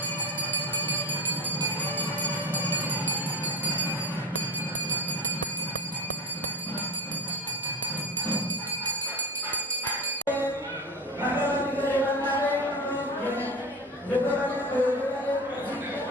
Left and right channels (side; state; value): both; normal; correlation 0.26